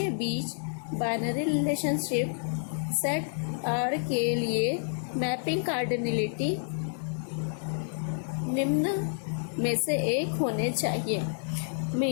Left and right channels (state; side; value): silent; right; digital silence